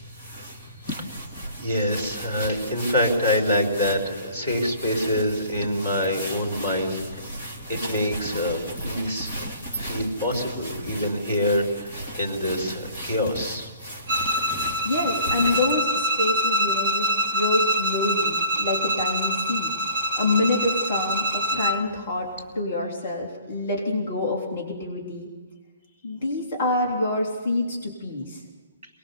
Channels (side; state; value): both; inverted; correlation -0.50